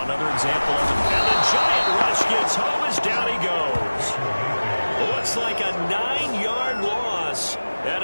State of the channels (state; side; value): inverted; both; correlation -1.00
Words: another example of it. And the giant rush gets home as down he goes. Looks like a 9-yard loss, and